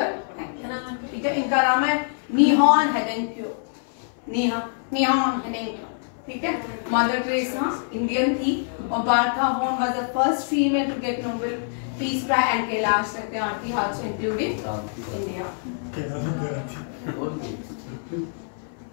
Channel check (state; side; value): silent; right; 61 dB below the other